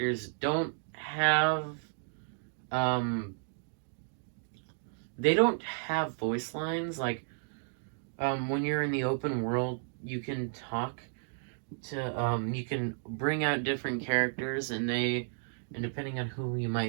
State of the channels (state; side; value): silent; left; digital silence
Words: don't have, they don't have voice lines. Like, when you're in the open world, you can talk to, you can bring out different characters, and depending on who you